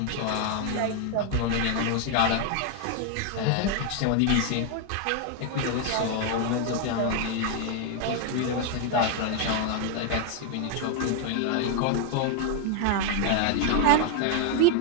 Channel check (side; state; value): both; different; correlation 0.00